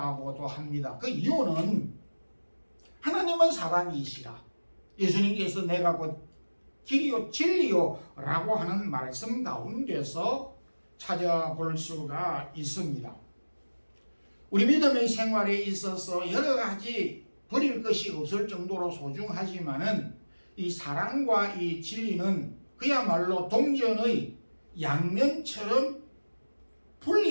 합니다. 그 이유는 하나님은 사랑이시라. 예수님께서 내가 곧 길이요 진리요 라고 하는 말씀 가운데서 찾아볼 수가 있습니다. 우리 믿음의 생활에 있어서 여러 가지 버릴 것이 없을 정도로 소중하지만은 이 사랑과 이 진리는 그야말로 동전의 양면처럼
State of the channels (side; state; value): both; inverted; correlation -1.00